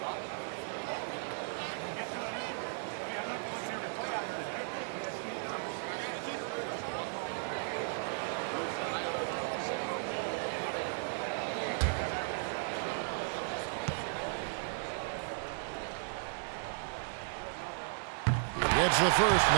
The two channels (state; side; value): silent; left; digital silence